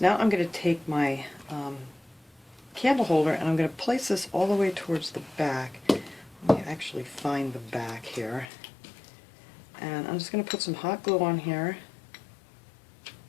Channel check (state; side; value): drops out; right; at 8.5 s